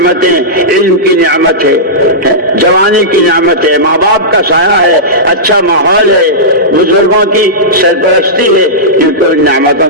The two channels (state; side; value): normal; both; correlation -0.14